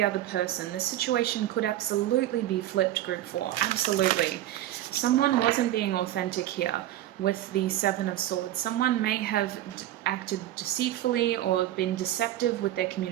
other person. The situation could absolutely be flipped, Group 4. Absolutely. Someone wasn't being authentic here with the Seven of Swords. Someone may have acted deceitfully or been deceptive with their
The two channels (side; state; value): left; quieter; 13.5 dB